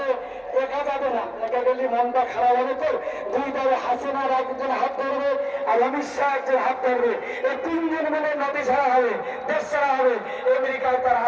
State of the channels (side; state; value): both; identical; correlation 1.00